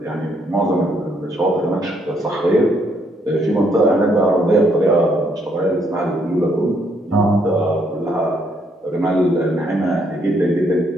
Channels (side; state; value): both; normal; correlation 0.71